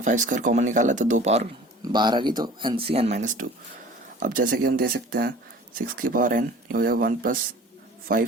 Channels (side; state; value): both; normal; correlation 0.45